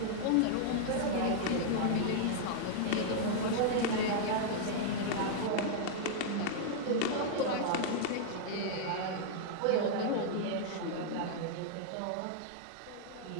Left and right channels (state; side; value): different; both; correlation -0.01